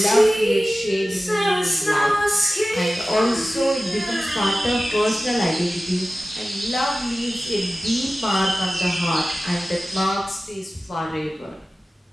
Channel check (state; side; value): normal; both; correlation 0.96